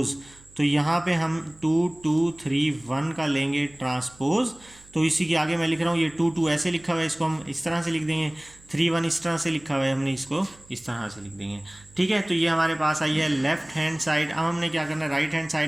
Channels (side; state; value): right; noise; hum, 25 dB below the sound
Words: तो यहाँ पे हम 2 2 3 1 का लेंगे ट्रांसपोज। तो इसी के आगे मैं लिख रहा हूँ, ये 2 2 ऐसे लिखा हुआ है, इसको हम इस तरह से लिख देंगे। 3 1 इस तरह से लिखा हुआ है, हमने इसको इस तरह से लिख देंगे, ठीक है। तो ये हमारे पास आई है लेफ्ट हैंड साइड। अब हमने क्या करना है, राइट हैंड